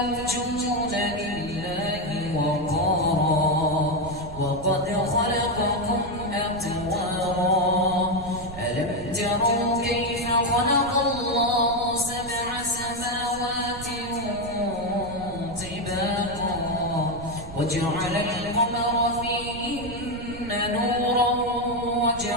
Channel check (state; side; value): noise; right; rumble, 13 dB below the sound